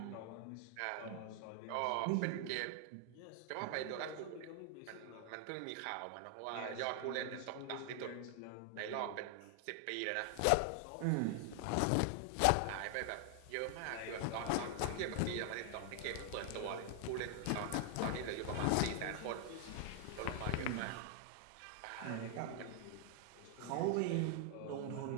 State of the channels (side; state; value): both; different; correlation 0.00